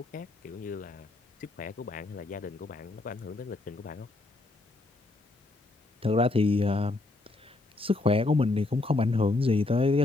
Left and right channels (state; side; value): quieter; right; 3.1 dB